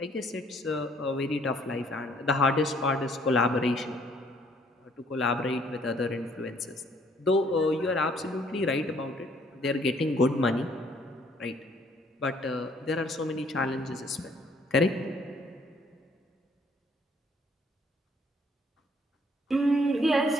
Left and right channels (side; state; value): both; normal; correlation 0.63